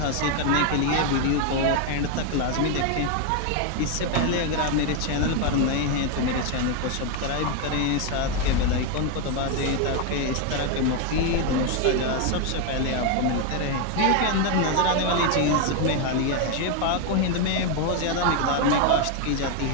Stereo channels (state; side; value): different; both; correlation 0.01